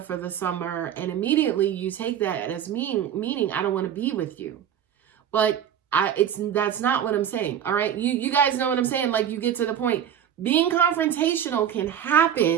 the summer. And immediately you take that as meaning I don't want to be with you. But that's not what I'm saying. All right. You guys know what I'm saying? Like you get to the point. Being confrontational can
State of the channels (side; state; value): left; quieter; 9.5 dB